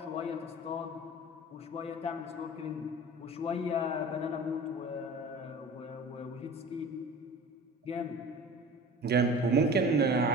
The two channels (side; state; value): both; normal; correlation 0.39